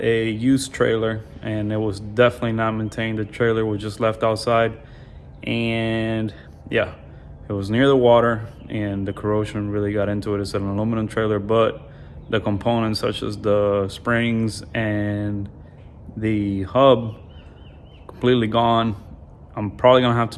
used trailer, and it was definitely not maintained. The trailer was just left outside, and yeah, it was near the water, and the corrosion really got into it. It's an aluminum trailer, but the components such as the springs and the hub completely gone. I'm probably gonna have to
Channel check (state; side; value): identical; both; correlation 1.00